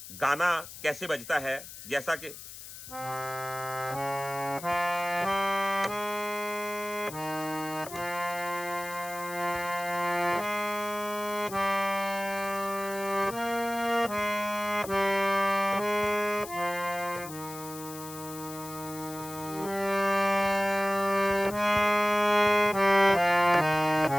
गाना कैसे बजता है, जैसा कि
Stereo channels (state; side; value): noise; left; hiss, 13 dB below the sound